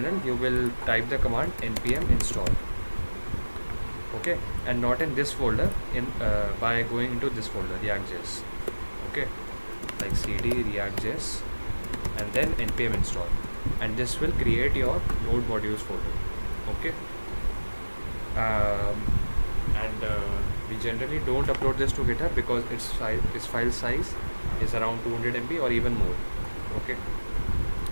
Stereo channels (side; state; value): both; inverted; correlation -1.00